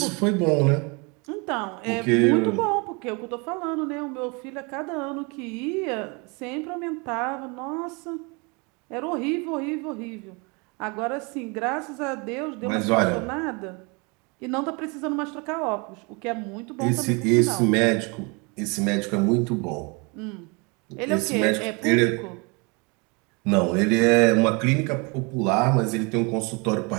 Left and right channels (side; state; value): left; quieter; 30.2 dB